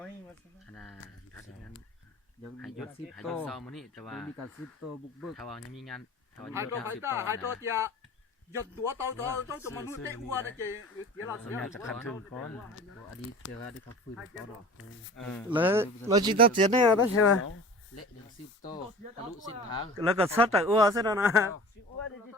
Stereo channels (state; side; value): normal; both; correlation 0.41